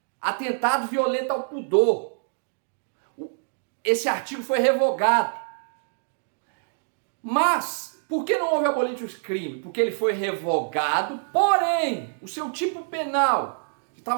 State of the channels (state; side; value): silent; left; digital silence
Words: atentado violento ao pudor. Esse artigo foi revogado. Mas, por que não houve abolitius crime? Porque ele foi revogado, porém, o seu tipo penal, que